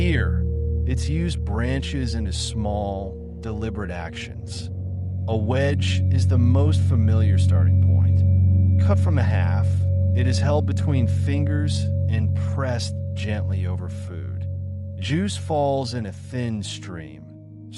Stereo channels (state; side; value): identical; both; correlation 1.00